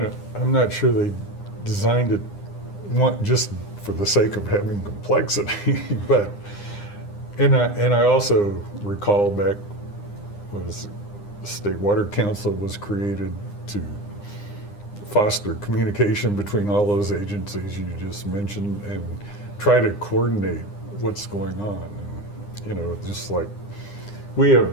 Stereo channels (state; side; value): late; right; 9.8 ms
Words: I'm not sure they designed it just for the sake of having complexity, but, and I also recall back was the State Water Council was created to foster communication between all those agencies you just mentioned and try to coordinate what's going on. And, you know, just like we